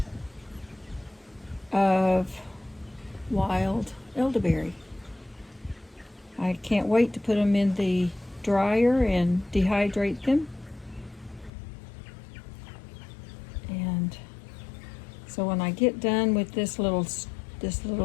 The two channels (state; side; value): drops out; right; at 11.5 s